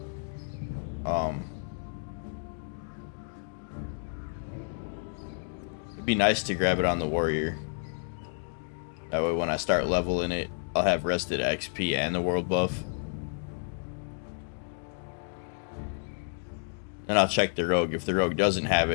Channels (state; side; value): silent; right; digital silence